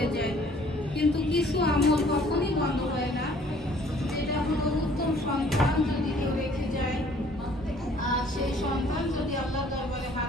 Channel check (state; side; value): normal; both; correlation 0.57